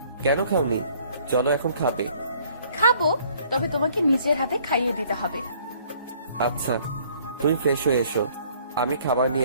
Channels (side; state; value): both; inverted; correlation -0.59